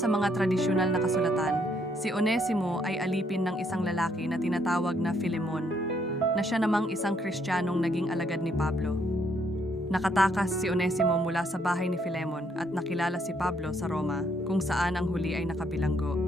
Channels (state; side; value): normal; both; correlation 0.71